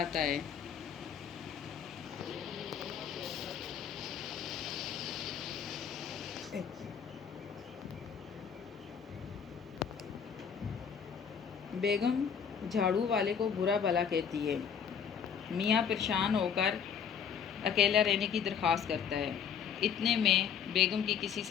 ہے، بیگم جھاڑو والے کو برا بھلا کہتی ہے۔ میاں پریشان ہو کر اکیلا رہنے کی درخواست کرتا ہے۔ اتنے میں بیگم کی کسی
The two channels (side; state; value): right; quieter; 7.5 dB